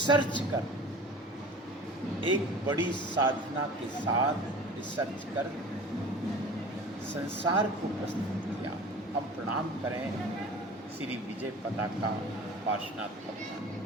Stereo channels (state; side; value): normal; both; correlation 0.40